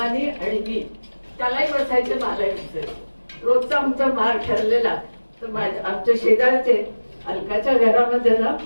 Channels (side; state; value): both; inverted; correlation -1.00